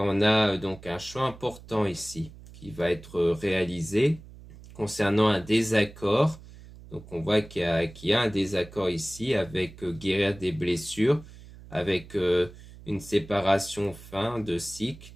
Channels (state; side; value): noise; right; hum, 18 dB below the sound